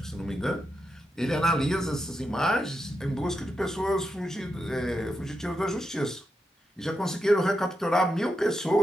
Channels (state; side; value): normal; both; correlation 0.86